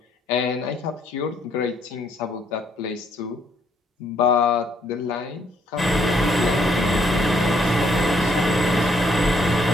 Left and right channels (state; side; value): normal; both; correlation 0.69